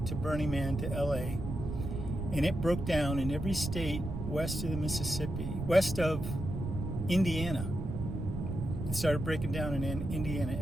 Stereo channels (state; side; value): noise; right; rumble, 5 dB below the sound